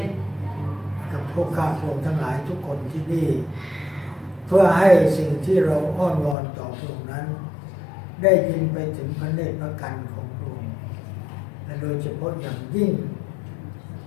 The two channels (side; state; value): right; drops out; at 6.4 s